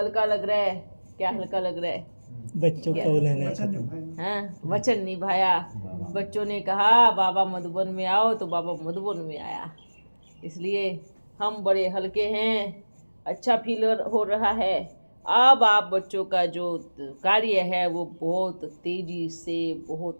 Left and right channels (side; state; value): both; inverted; correlation -1.00